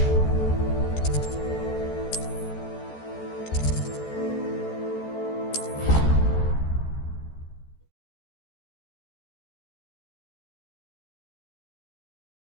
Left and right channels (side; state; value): right; late; 14 ms